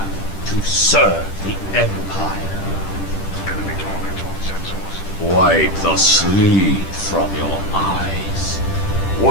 to serve the Empire. Wipe the sleep from your eyes.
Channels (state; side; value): late; right; 10 ms